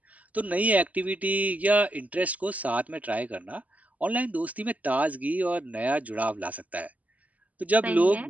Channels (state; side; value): late; left; 0.075 ms